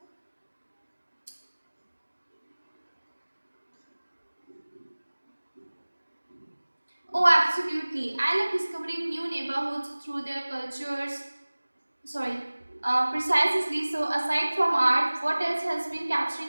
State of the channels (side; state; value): both; inverted; correlation -1.00